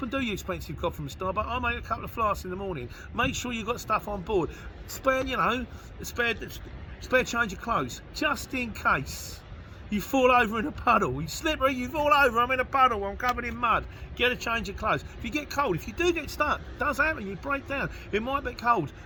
and do your expensive coffee from Starbucks. I'll make a couple of flasks in the morning. Make sure you've got stuff on board. Spare change of clothes, just in case you fall over in a puddle. You slippery, you fall over, I'm in a puddle, I'm covered in mud. Get a change of clothes. If you get cold, if you do get stuck, it does happen, you break down, it might be cold,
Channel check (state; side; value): identical; both; correlation 1.00